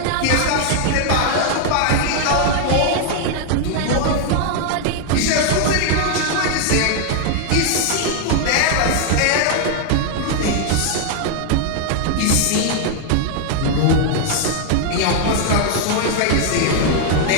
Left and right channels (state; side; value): different; both; correlation 0.00